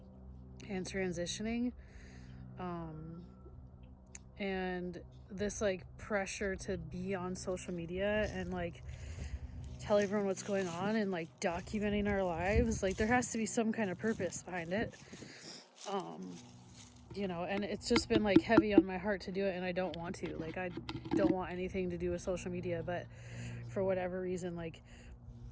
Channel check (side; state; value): both; identical; correlation 1.00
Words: and transitioning. And this like pressure to be on social media and like tell everyone what's going on and like documenting our lives, like there has to be some kind of purpose behind it. You know, and it's just been like heavy on my heart to do it, and I don't want to. Like, I don't want anything to do with social media, but for whatever reason, like